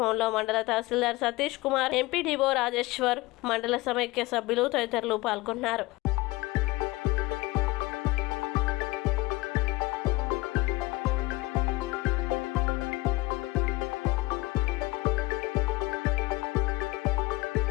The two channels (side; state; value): right; quieter; 20.6 dB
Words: మండల తహసీల్దార్ సతీష్ కుమార్, ఎంపీడీఓ రాజేశ్వర్, మండల సమైక్య సభ్యులు తదితరులు పాల్గొన్నారు.